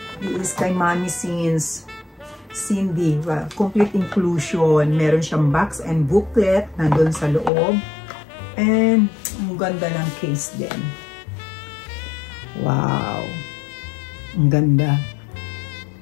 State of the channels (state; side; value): drops out; right; at 7.5 s